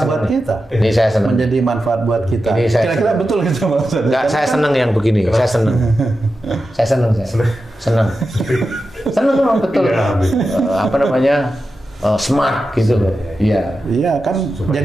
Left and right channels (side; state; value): both; normal; correlation 0.91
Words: buat kita. Ini saya senang. Menjadi manfaat buat kita. Kira-kira betul gitu Mas Ustadz. Enggak, saya senang yang begini. Saya senang. Senang memang betul. Apa namanya, smart gitu loh. Iya kan,